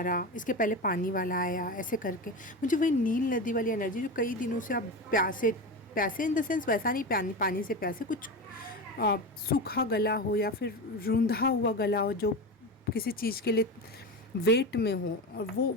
रहा, इसके पहले पानी वाला आया, ऐसे करके मुझे वही नील नदी वाली एनर्जी, जो कई दिनों से आप प्यासे, प्यासे इन द सेंस वैसा नहीं, पानी पानी से प्यासे, कुछ सूखा गला हो या फिर रूंधा हुआ गला हो, जो किसी चीज़ के लिए वेट में हो, और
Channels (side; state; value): both; normal; correlation 0.23